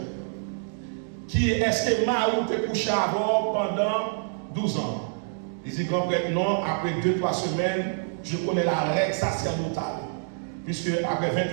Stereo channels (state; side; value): silent; left; digital silence